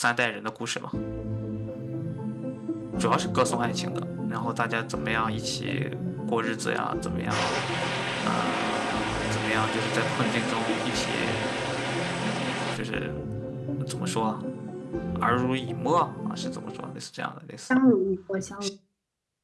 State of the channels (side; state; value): both; identical; correlation 1.00